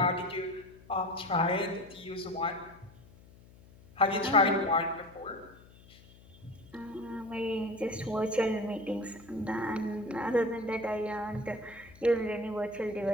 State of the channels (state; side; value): noise; left; hum, 23 dB below the sound